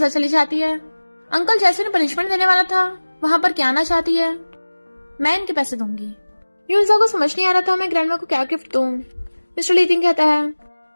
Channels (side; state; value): both; inverted; correlation -1.00